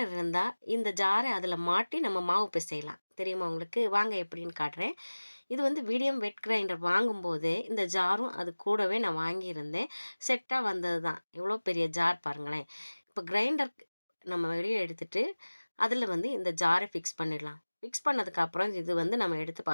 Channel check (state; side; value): inverted; both; correlation -1.00